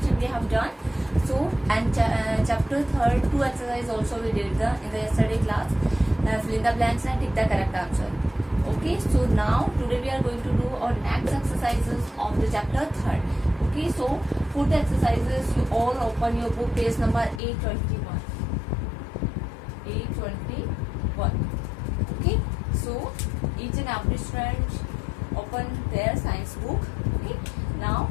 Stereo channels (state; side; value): drops out; right; at 17.4 s